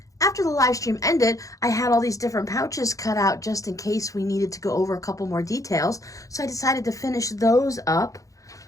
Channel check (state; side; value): late; right; 0.16 ms